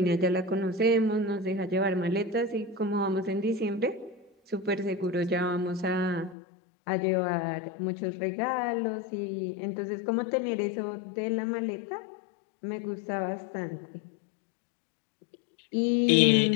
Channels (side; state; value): right; drops out; at 6.4 s